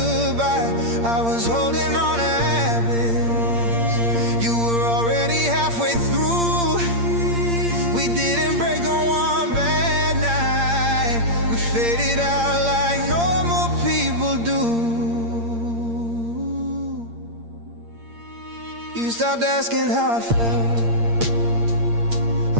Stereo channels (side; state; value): left; late; 8.7 ms